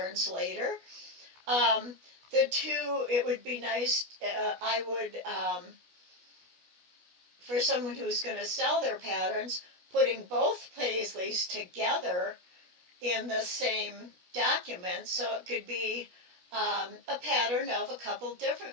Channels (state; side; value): late; left; 17 ms